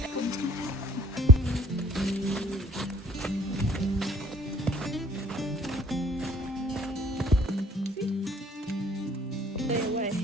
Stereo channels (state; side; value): normal; both; correlation 0.55